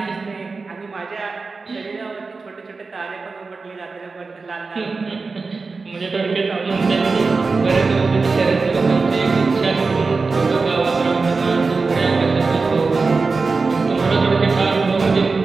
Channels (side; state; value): left; quieter; 4.2 dB